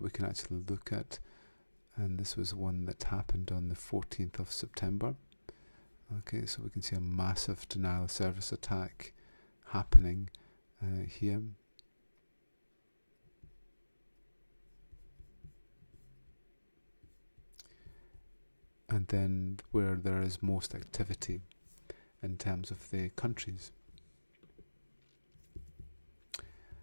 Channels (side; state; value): both; inverted; correlation -1.00